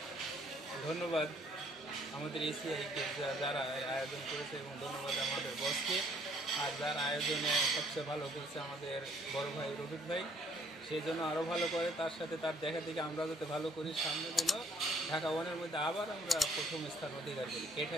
ধন্যবাদ আমাদের এসিআইকে যারা আয়োজন করেছে, এবং ধন্যবাদ আমাদের বসকে। আর যারা আয়োজনে সবচেয়ে ভালো করেছে আমাদের বড় ভাই রফিক ভাই, সেই জন্য আরও ভালো করে, তার সাথে তার দেখা থেকে আমরা যাতে ভালো করি, সামনে যেন ঢাকা ওয়ানের মধ্যে আবার আমরা প্রথম স্থান অধিকার করি,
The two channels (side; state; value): both; normal; correlation 0.63